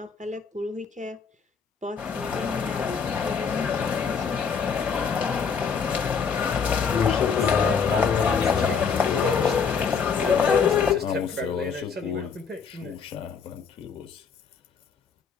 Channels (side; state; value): right; quieter; 6.1 dB